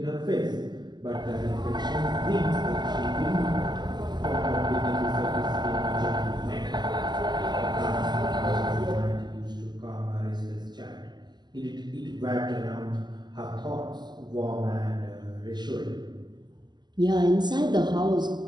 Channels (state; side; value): late; left; 0.21 ms